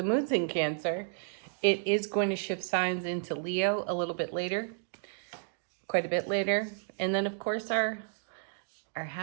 moon's in Cancer. It is going to shift signs into Leo a little bit later, quite a bit later. And then, of course, our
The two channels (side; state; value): left; silent; digital silence